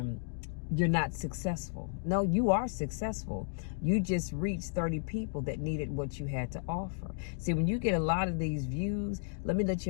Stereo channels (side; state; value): right; silent; digital silence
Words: you're not successful. No, you are successful. You just reached 30 people that needed what you had to offer. See, when you get a lot of these views, let me let